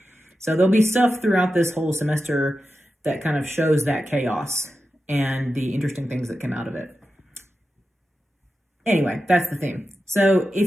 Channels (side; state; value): both; normal; correlation 0.91